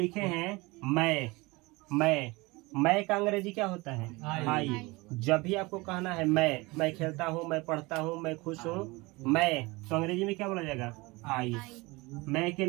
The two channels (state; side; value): quieter; left; 23.6 dB